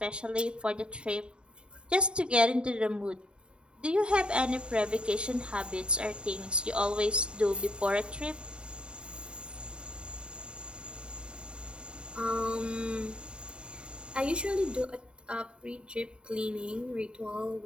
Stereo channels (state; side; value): late; left; 0.052 ms